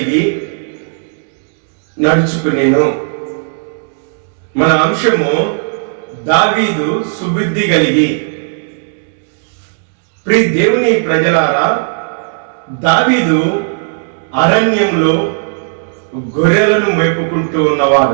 నడుచుకునేను. మన అంశము దావీదు సుబుద్ధి కలిగి. ప్రియ దేవుని ప్రజలారా, దావీదు అరణ్యంలో గొర్రెలను మేపుకుంటూ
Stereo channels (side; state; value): left; silent; digital silence